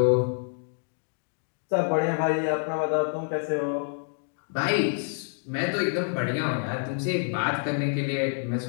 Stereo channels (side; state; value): right; silent; 60 dB below the other